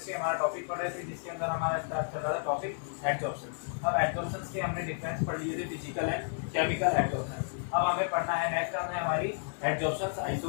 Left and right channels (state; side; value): silent; right; 56 dB below the other